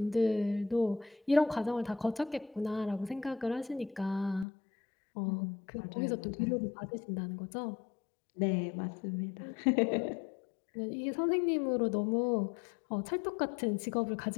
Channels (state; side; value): drops out; right; at 4.5 s